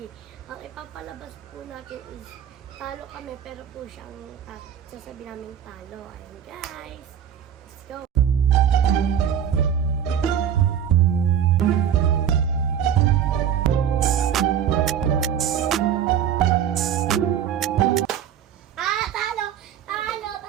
Ang ipapalabas po natin is talo kami, pero po siyang sasabi namin talo. Ayun guys, let's go!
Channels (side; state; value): left; quieter; 9.0 dB